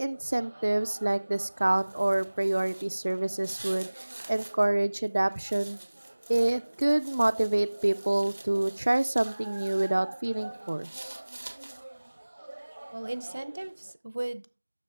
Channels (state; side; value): inverted; both; correlation -1.00